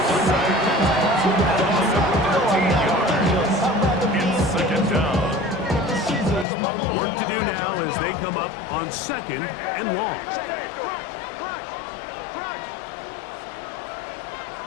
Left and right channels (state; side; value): drops out; right; at 6.5 s